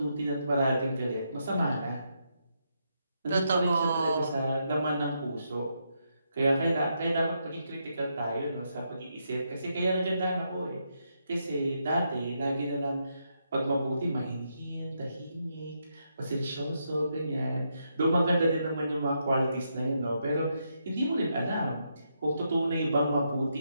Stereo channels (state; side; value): inverted; both; correlation -0.80